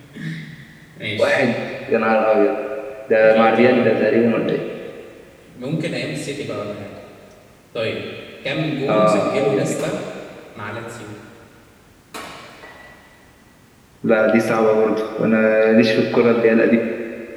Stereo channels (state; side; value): identical; both; correlation 1.00